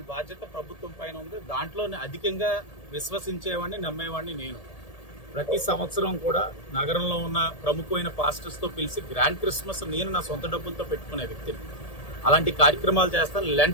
బాధ్యత ప్రభుత్వం పైన ఉంది. దాంట్లోనే అధికంగా విశ్వసించేవాడిని, నమ్మేవాడిని నేను. ప్రతి సంవత్సరం కూడా నగరంలో ఉన్న ప్రముఖమైన పాస్టర్స్తో పిలిచి గ్రాండ్ క్రిస్మస్ నేను నా సొంత డబ్బులతో పెట్టుకునే వ్యక్తిని. అలాంటి కార్యక్రమాలు చేస్తాను.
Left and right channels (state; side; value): late; right; 1.8 ms